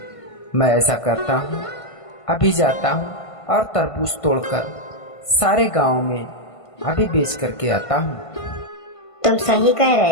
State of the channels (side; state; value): right; late; 1.5 ms